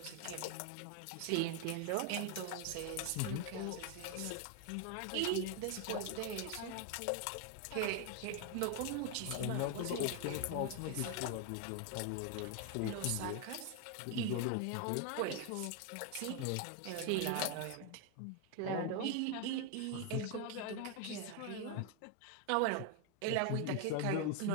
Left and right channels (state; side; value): different; both; correlation 0.01